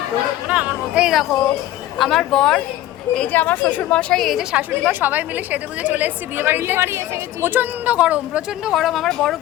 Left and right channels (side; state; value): right; quieter; 14.3 dB